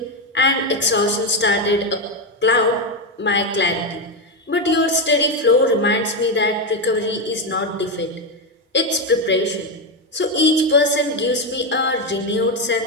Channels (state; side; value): normal; both; correlation 0.09